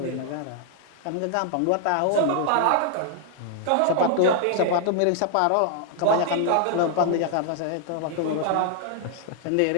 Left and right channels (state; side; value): different; both; correlation 0.00